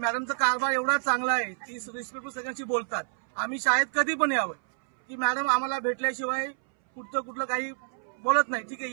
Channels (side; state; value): left; silent; 59 dB below the other